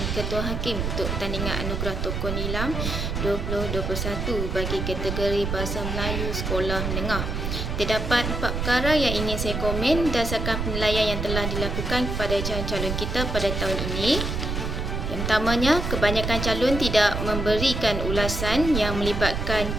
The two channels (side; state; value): right; noise; rumble, 2 dB below the sound